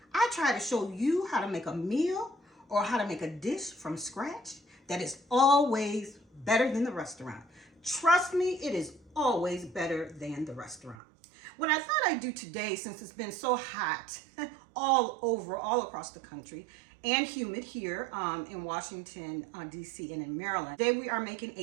I try to show you how to make a meal or how to make a dish from scratch that is always better than the restaurant. Trust me, it is always better than the restaurant. What I thought I'd do today, since it's been so hot all across the country, and humid here in Washington, D.C. and in Maryland. Today we are making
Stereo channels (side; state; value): left; drops out; at 11.0 s